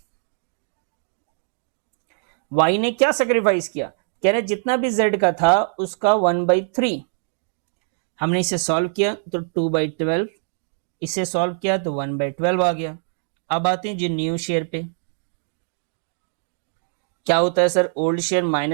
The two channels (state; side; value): silent; left; digital silence